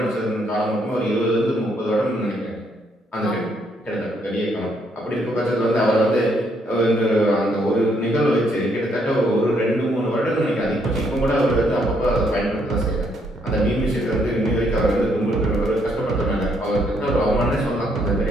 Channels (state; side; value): normal; both; correlation 0.72